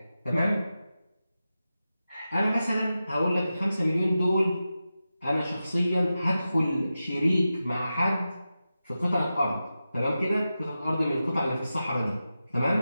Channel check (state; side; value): inverted; both; correlation -0.92